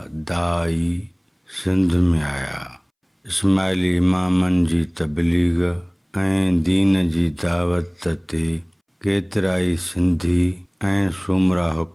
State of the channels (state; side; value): identical; both; correlation 1.00